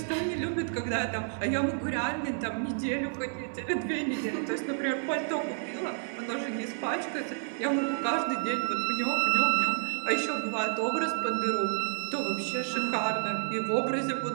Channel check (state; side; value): silent; left; digital silence